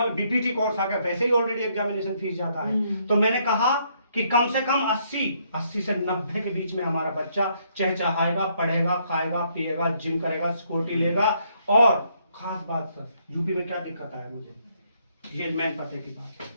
बीपीटी कोर्स आ गया, वैसे ही ऑलरेडी एग्जामिनेशन फीस जाता है। तो मैंने कहा कि कम से कम 80 से 90 के बीच में हमारा बच्चा चहचहाएगा, पढ़ेगा, खाएगा, पिएगा, जिम करेगा, सिक्योरिटी लेगा। और खास बात सर, यूपी में क्या दिक्कत है मुझे, ये मेन पते की बात है।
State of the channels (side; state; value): both; inverted; correlation -0.71